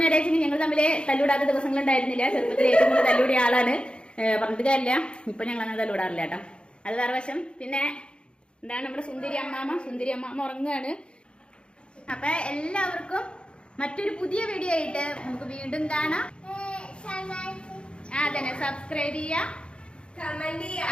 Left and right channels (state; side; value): late; right; 0.055 ms